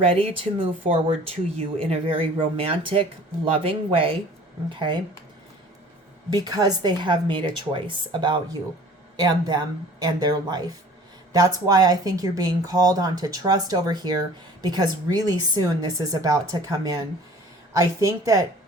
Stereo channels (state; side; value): normal; both; correlation 0.48